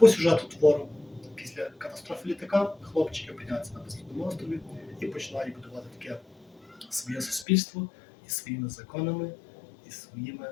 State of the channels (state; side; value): drops out; right; at 7.5 s